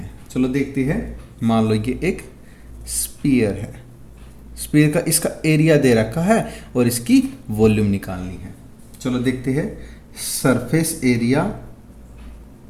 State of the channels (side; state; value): both; identical; correlation 1.00